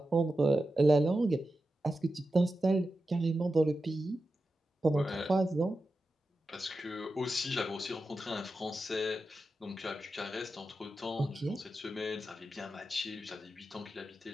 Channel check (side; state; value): both; normal; correlation 0.91